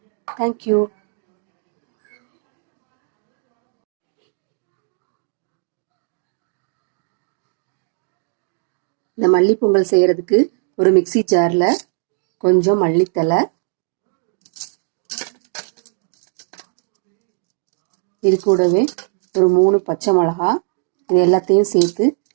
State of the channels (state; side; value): silent; left; digital silence